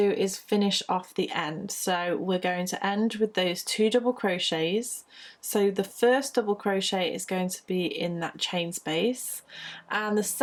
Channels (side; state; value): both; identical; correlation 1.00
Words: is finish off the end. So we're going to end with those 2 double crochets. So the first double crochet is going to be in that chain space, and the